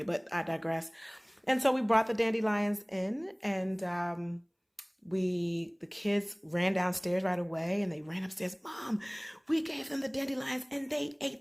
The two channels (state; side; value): identical; both; correlation 1.00